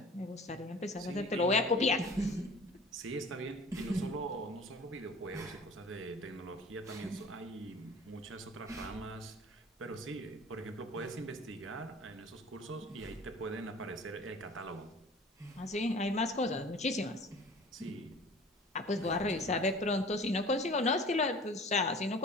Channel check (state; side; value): normal; both; correlation 0.44